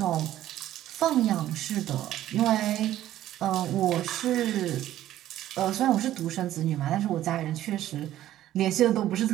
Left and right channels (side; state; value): left; quieter; 13.2 dB